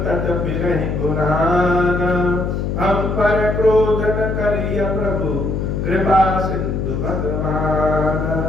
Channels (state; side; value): noise; left; hum, 1 dB below the sound